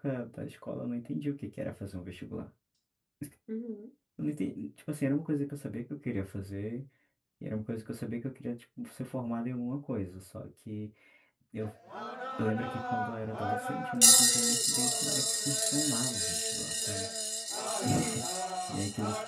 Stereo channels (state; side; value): identical; both; correlation 1.00